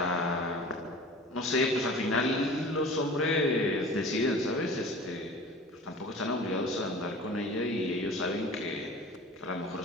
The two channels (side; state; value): both; normal; correlation 0.40